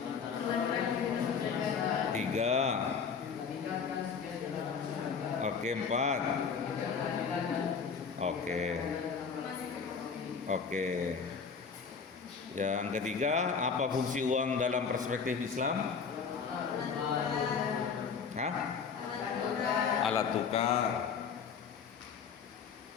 3. Oke, 4. Oke. Yang ketiga, apa fungsi uang dalam perspektif Islam? Hah? Alat tukar.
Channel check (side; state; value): right; quieter; 6.0 dB